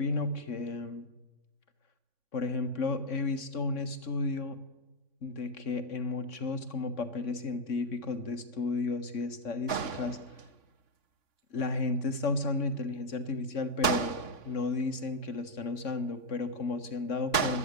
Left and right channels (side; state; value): right; late; 3.6 ms